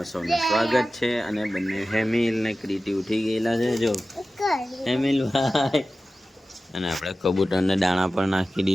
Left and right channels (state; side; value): normal; both; correlation 0.95